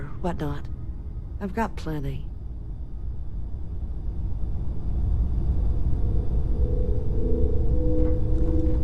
whatnot. I've got plenty.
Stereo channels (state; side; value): identical; both; correlation 1.00